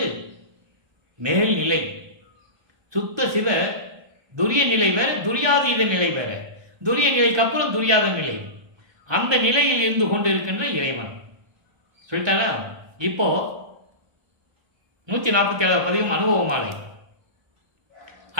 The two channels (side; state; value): left; late; 1.2 ms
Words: மேல்நிலை. சுத்த சிவ துரிய நிலை வேற, துரியாதீத நிலை வேற. துரிய நிலைக்கு அப்புறம் துரியாத நிலை. அந்த நிலையில் இருந்து கொண்டிருக்கின்ற இறைவன் சொல்லிட்டாரா? இப்போ 147 பதிகம் அனுபவமாலை.